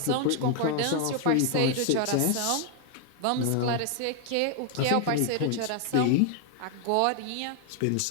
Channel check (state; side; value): different; both; correlation 0.00